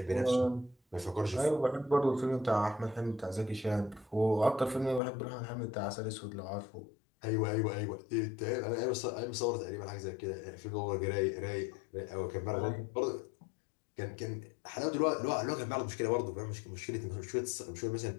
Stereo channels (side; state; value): right; drops out; at 5.0 s